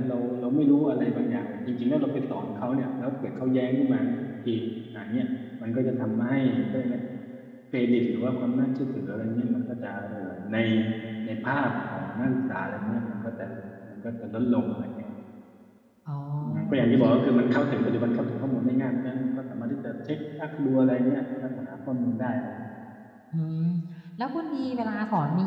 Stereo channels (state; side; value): identical; both; correlation 1.00